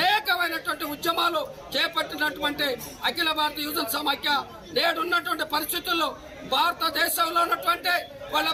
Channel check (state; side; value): identical; both; correlation 1.00